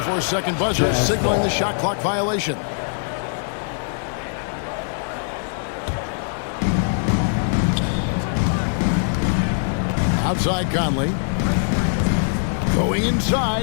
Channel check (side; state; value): right; silent; 64 dB below the other